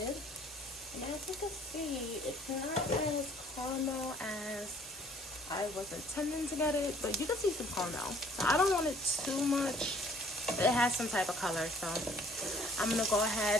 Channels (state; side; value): normal; both; correlation 0.58